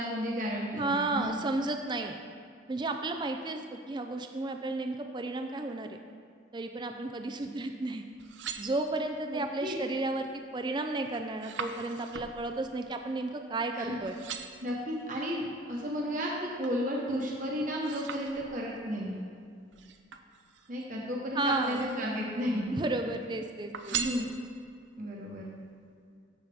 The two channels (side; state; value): both; normal; correlation 0.46